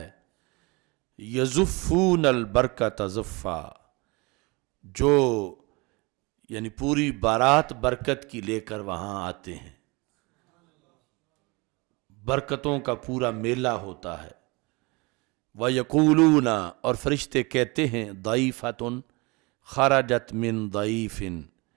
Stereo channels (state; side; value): quieter; left; 26.6 dB